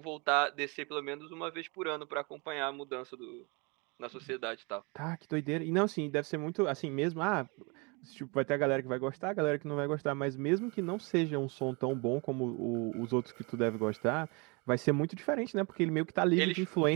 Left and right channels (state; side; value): quieter; left; 30.0 dB